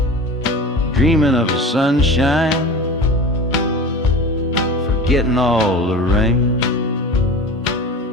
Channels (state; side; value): normal; both; correlation 0.34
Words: dreaming of the sunshine, forgetting all the rain.